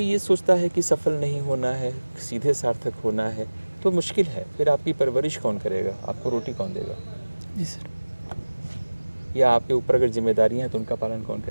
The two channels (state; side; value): inverted; both; correlation -1.00